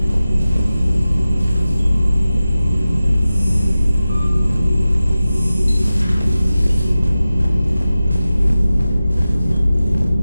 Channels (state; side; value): inverted; both; correlation -0.95